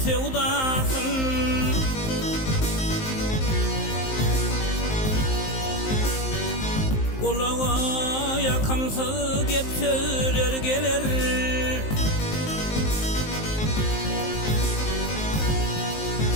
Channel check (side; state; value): right; late; 19 ms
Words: sevdasın, kulağa yakamsız gep söyler gelir.